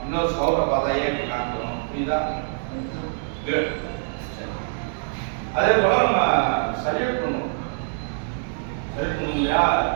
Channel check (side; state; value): left; silent; digital silence